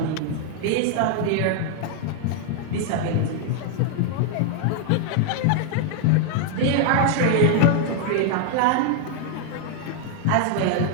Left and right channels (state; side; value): different; both; correlation 0.00